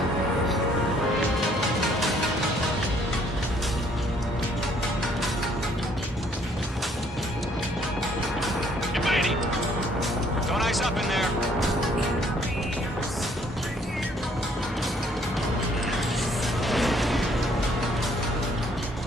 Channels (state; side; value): normal; both; correlation 0.64